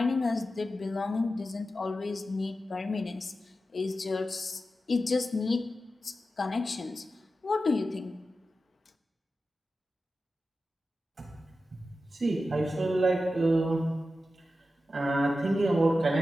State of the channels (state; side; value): normal; both; correlation 0.92